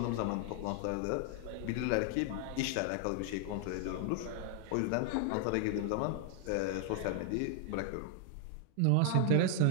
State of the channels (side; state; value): both; different; correlation 0.00